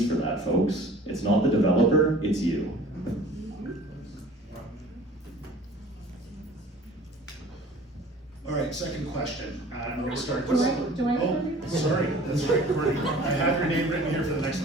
for that, folks? It's not the developer, it's you. All right, second question. I'm going to start. Do I Oh, sorry, that's right, Kourtney. I have your name written here for the next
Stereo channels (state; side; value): normal; both; correlation 0.47